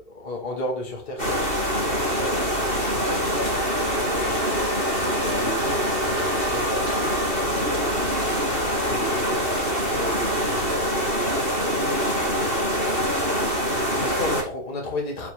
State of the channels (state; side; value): late; left; 2.6 ms